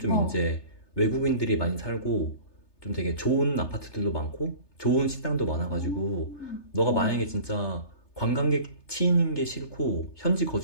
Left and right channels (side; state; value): right; late; 3.3 ms